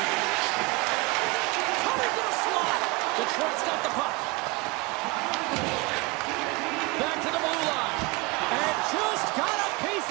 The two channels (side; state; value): left; quieter; 25.2 dB